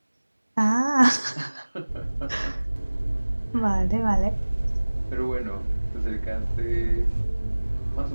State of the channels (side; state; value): both; inverted; correlation -1.00